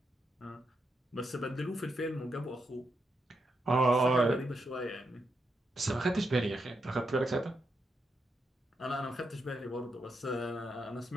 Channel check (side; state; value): both; normal; correlation 0.83